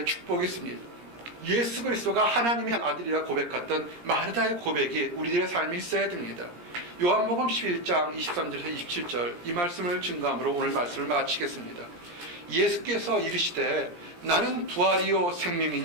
축복이 있습니다. 예수 그리스도가 하나님의 아들이라 고백했던 마르다의 고백이 우리들의 삶에 있어야 됩니다. 요한복음 11장 23절에서 27절 이 말씀을 증거함으로 오늘 말씀을 마치겠습니다. 예수께서 이르시되 나는 부활이요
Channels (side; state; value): left; late; 17 ms